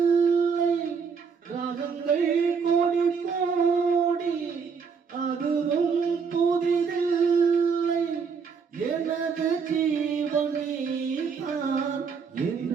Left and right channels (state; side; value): quieter; left; 5.8 dB